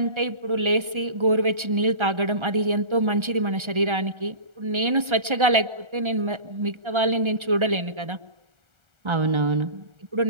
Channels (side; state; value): left; late; 1.3 ms